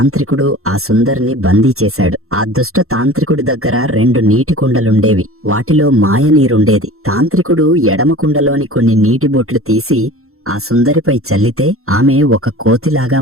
ఆ సుందరిని బందీ చేశాడు. ఆ దుష్ట తాంత్రికుడి దగ్గర 2 నీటి కుండలుండేవి. వాటిలో మాయ నీరుండేది. తాంత్రికుడు ఎడమ కుండలోని కొన్ని నీటి బొట్లు తీసి ఆ సుందరిపై చల్లితే ఆమె ఒక కోతిలాగా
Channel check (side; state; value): left; late; 0.63 ms